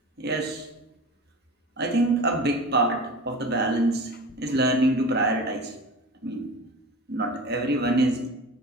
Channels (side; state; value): both; normal; correlation 0.34